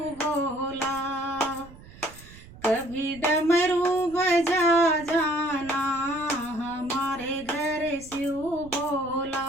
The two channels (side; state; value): right; noise; rumble, 20 dB below the sound